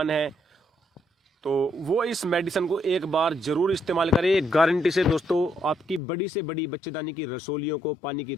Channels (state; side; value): drops out; right; at 6.0 s